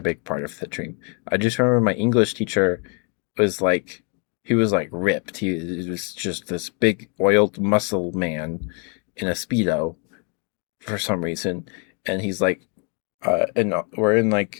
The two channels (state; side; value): quieter; right; 37.9 dB